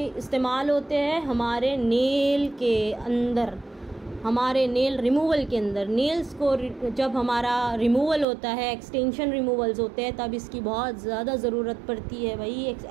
इस्तेमाल होते हैं हमारे नेल के अंदर, हमारे नेल रिमूवल के अंदर। नेल्स को जब हमारा रिमूवल होता है, एक्सटेंशन रिमूवल्स होते हैं, तब इसकी बहुत ज़्यादा ज़रूरत पड़ती है भाई, एक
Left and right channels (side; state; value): left; drops out; at 8.2 s